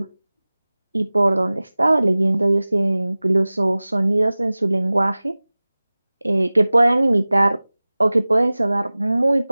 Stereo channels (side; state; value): both; inverted; correlation -0.99